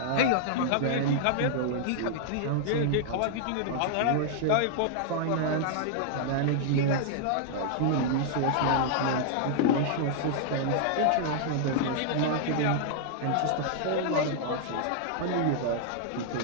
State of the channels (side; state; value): both; different; correlation -0.01